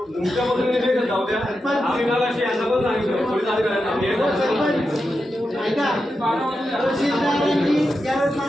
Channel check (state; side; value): normal; both; correlation 0.89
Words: बद्दल जाऊ द्या. आम्ही मागाशी यांना पण सांगितलं पोलीस अधिकाऱ्यांना ऐका तहसीलदारांनी ज्यावेळेस